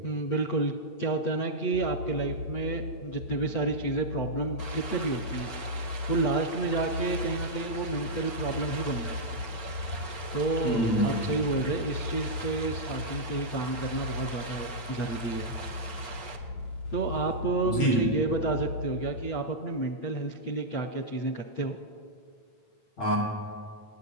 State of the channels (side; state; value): right; late; 8.8 ms